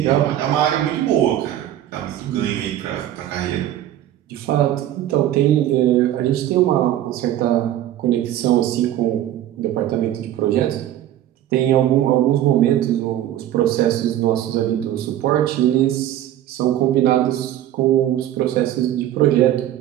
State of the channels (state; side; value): quieter; left; 12.4 dB